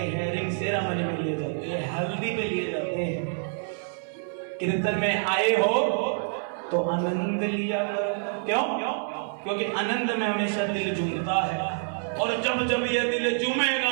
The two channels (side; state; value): left; silent; 60 dB below the other